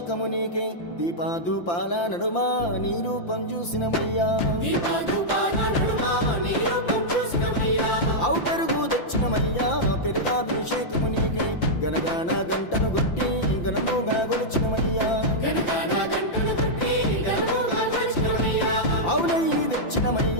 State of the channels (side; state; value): right; late; 5.8 ms